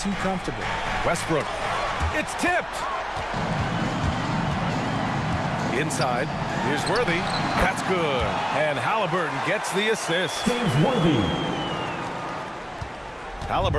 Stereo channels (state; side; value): identical; both; correlation 1.00